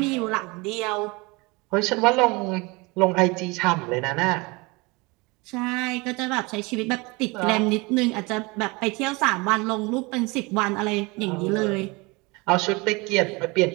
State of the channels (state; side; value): quieter; left; 25.8 dB